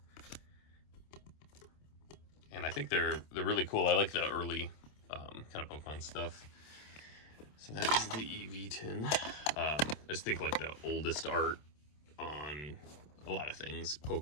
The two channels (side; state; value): right; late; 27 ms